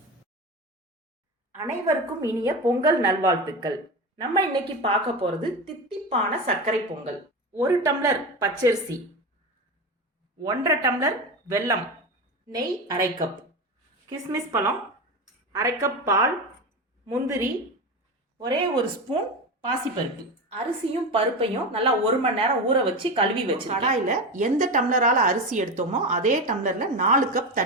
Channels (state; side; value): normal; both; correlation 0.21